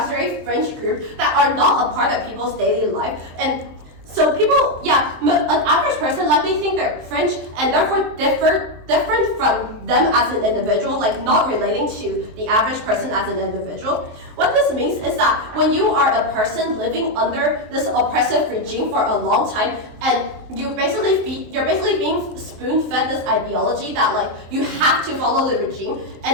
very fringe group that are not a part of people's daily life. And so people, an average person likely think they're fringe and therefore different from them as an individual, not relating to the average person as an individual. What this means is that when you are a person living under this oppressive regime for a long time, and you're basically being spoon-fed this ideology that you have to follow the regime,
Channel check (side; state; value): left; late; 23 ms